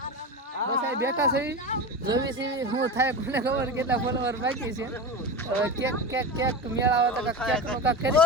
બસ આ બેઠા છે જોવી છે હું થાય કોને ખબર કેટલા ફોલોવર બાકી છે કેક મેળાવે તો કેક નો કાક કરી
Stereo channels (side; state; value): both; normal; correlation 0.25